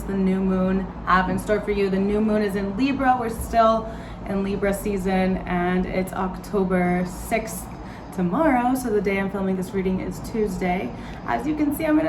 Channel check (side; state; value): both; identical; correlation 1.00